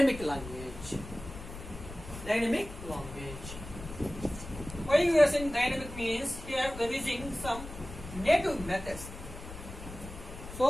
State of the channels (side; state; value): left; noise; rumble, 12 dB below the sound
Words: language. Dynamic language. Why you are saying dynamic means here we are using some native methods.